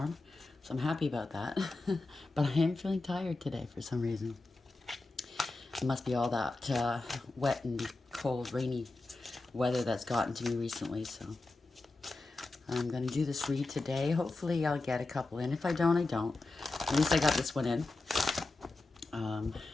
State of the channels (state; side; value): quieter; right; 3.2 dB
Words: so I'm happy about that. But I am feeling tired today for some reason. It must be all that wet and cold, rainy weather that's gotten to me recently, so I'm going to do this read today. Hopefully I'll get a couple in. If I don't, I don't. At least I got this one in.